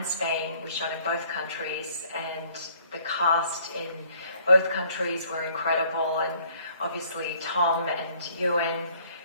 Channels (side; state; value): both; inverted; correlation -0.60